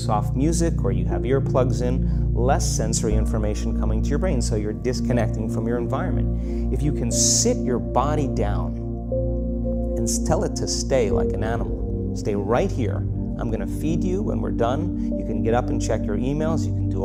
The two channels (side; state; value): both; identical; correlation 1.00